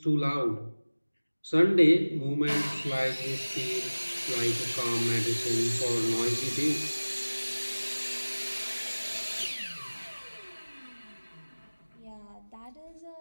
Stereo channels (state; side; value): inverted; both; correlation -1.00